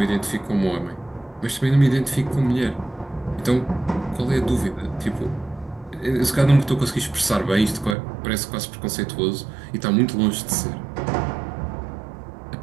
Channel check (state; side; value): drops out; left; at 8.0 s